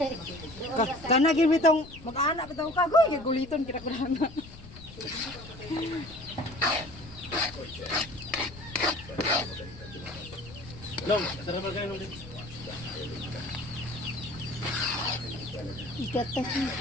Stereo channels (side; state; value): left; noise; rumble, 17 dB below the sound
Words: Kanagin bitong mag-anak bitong kagoy, guliton kira ko lang. Long, sarap kayo nung dito. Igatas mo.